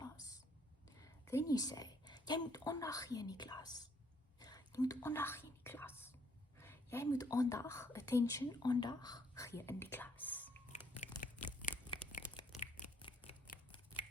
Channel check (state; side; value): normal; both; correlation 0.67